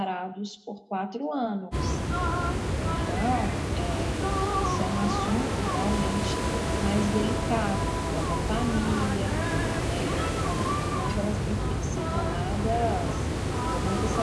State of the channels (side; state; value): both; identical; correlation 1.00